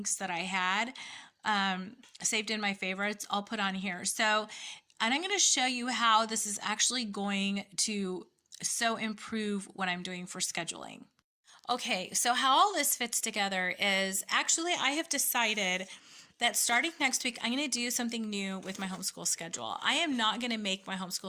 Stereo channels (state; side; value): identical; both; correlation 1.00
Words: that I had saved in my favorites, I'll put on here. So, and I'm going to show you how this is actually going to so improve what I'm doing for scheduling. Okay, so how all this fits together is actually I have decided that starting next week, I'm going to do something new with my homeschool schedule. I am not going to make my